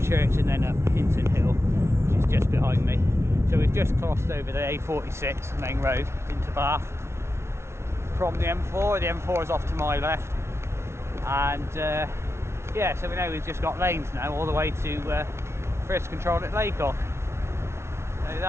and then up Hinton Hill, which is just behind me. So we've just crossed over the A46 main road into Bath from the M4. The M4 is off to my left, and yeah, so we know we've just got lanes now all the way to first control at Laycock. So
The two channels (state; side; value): late; left; 0.13 ms